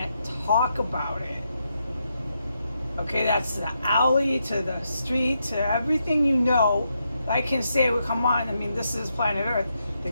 talk about it. Okay, that's the alley to the street to everything you know. I can say, well, come on, I mean, this is planet Earth. The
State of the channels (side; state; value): both; inverted; correlation -0.82